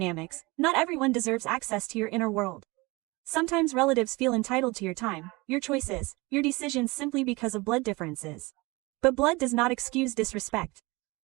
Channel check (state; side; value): quieter; left; 24.1 dB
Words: not everyone deserves access to your inner world. Sometimes relatives feel entitled to your time, your choices, your decisions simply because of blood differences. But blood does not excuse disrespect.